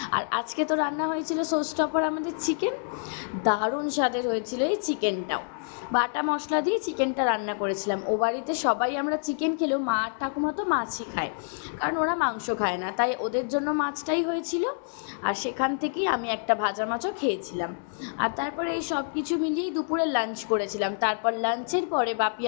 আর আজকে তো রান্না হয়েছিল শোস্টপার আমাদের চিকেন। দারুণ স্বাদের হয়েছিল এই চিকেনটাও। বাটা মশলা দিয়ে চিকেনটা রান্না করেছিলাম। ও বাড়িতে সবাই আমরা চিকেন খেলেও মা আর ঠাকুমা তো মাছই খায়, কারণ ওরা মাংস খায় না, তাই ওদের জন্য মাছটাই হয়েছিল। আর সেখান থেকেই আমি একটা ভাজা মাছও খেয়েছিলাম। আর তারপরে এই সব কিছু মিলিয়েই দুপুরে লাঞ্চ করেছিলাম। তারপর লাঞ্চের পরে বাপি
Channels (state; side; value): silent; right; 60 dB below the other